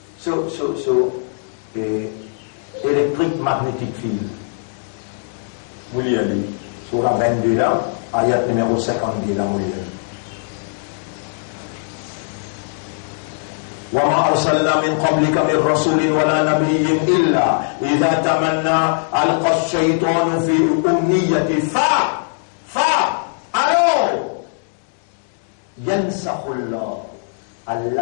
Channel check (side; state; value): right; silent; 65 dB below the other